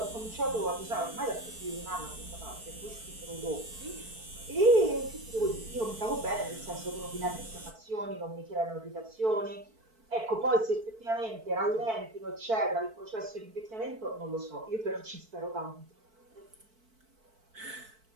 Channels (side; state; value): left; late; 4.5 ms